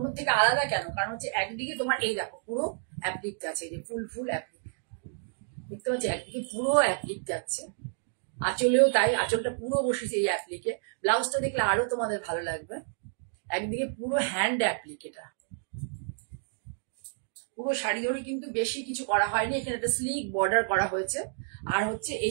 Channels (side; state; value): left; silent; digital silence